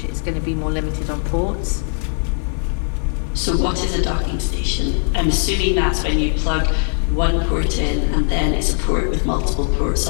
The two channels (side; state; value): right; silent; 63 dB below the other